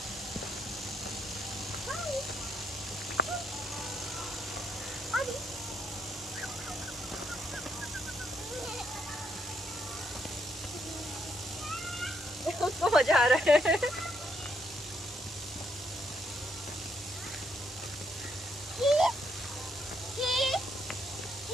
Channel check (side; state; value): both; normal; correlation 0.75